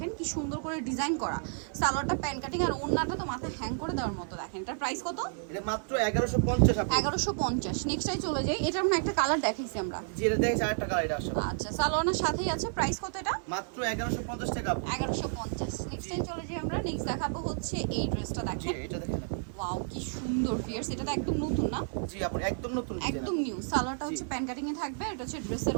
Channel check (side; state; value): left; silent; digital silence